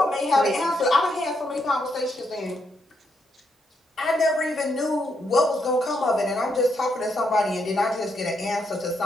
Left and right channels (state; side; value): normal; both; correlation 0.78